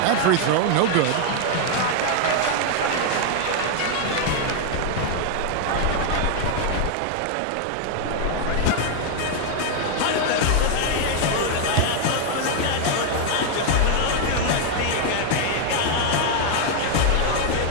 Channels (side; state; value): both; different; correlation 0.00